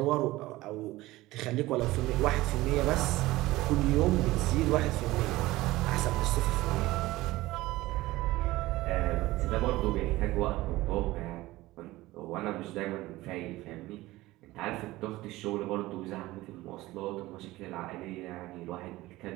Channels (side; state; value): left; quieter; 18.3 dB